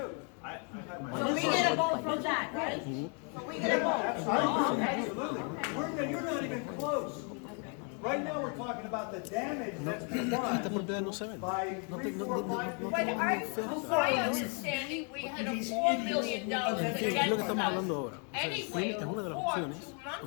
So we get a vote from that, right? So we get a vote. Absolutely. You're not even close. Right now, we're talking about the damage that's been done by 3, 4, 5 people. But my understanding, we had a $4 million against us. Anyway, Es una de las opciones,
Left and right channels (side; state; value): right; quieter; 38.8 dB